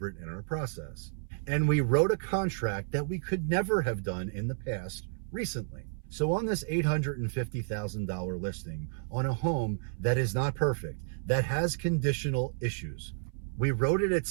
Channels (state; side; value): silent; left; 55 dB below the other